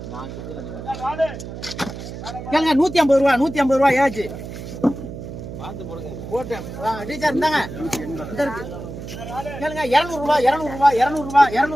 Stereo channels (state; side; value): noise; right; hum, 10 dB below the sound